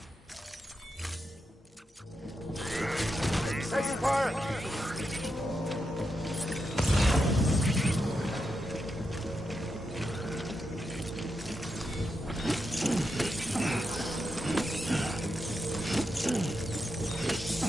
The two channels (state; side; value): normal; both; correlation 0.86